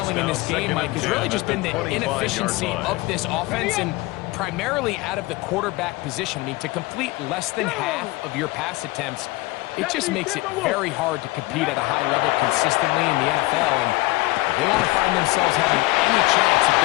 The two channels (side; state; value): right; quieter; 21.3 dB